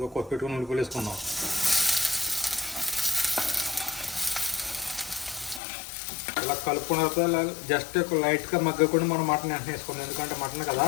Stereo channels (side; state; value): right; drops out; at 5.6 s